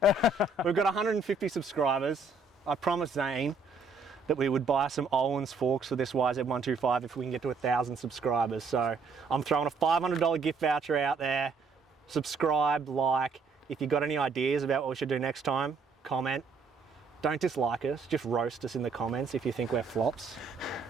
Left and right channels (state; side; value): quieter; left; 4.0 dB